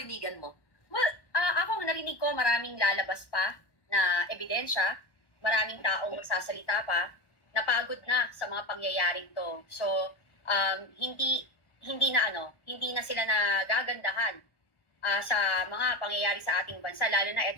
mo? Well, ako narinig ko maraming lalabas pa na ebidensya, maraming taong magsasalita pa, napagod na sa mga pangyayaring to. So, hindi na sila nagagandahan sa mga pangyayari sa ating bansa, lalo na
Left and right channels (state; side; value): late; right; 1.1 ms